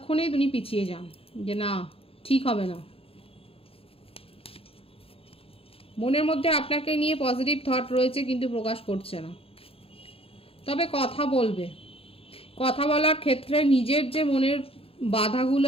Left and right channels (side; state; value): right; late; 0.27 ms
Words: উনি পিছিয়ে যান যে না, ঠিক হবে না। মনের মধ্যে আপনাকে নিয়ে পজিটিভ থট রয়েছে, কিন্তু প্রকাশ করছে না। তবে কথা বলবে, কথা বলার ক্ষেত্রে নিজের যে মনের বাধাগুলো